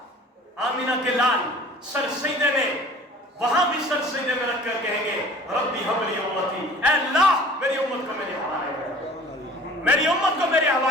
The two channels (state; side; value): normal; both; correlation 0.47